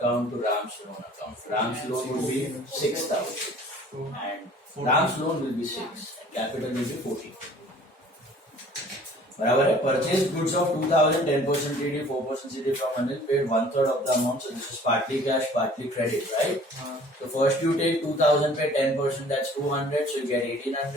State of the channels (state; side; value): normal; both; correlation 0.51